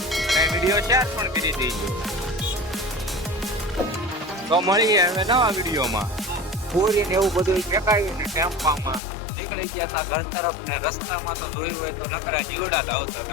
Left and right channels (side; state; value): right; drops out; at 9.0 s